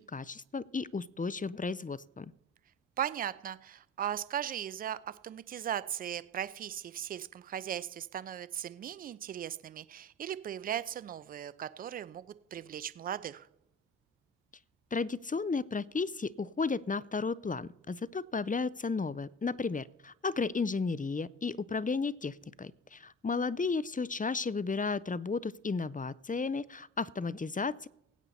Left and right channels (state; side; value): normal; both; correlation 0.38